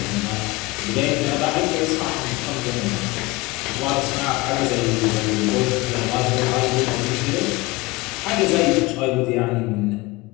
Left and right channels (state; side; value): quieter; right; 22.4 dB